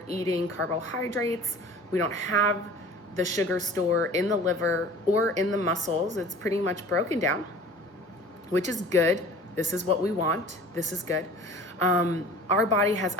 eating carbohydrates. We don't have the sugar store in the liver or in the muscles. It's pretty much broken down, which is good. This is what we want. This is good. Our body has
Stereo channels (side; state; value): both; normal; correlation 0.44